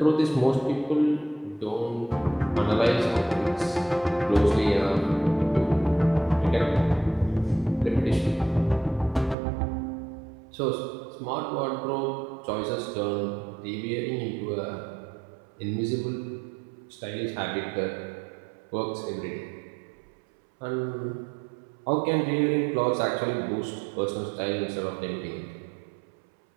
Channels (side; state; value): left; drops out; at 9.3 s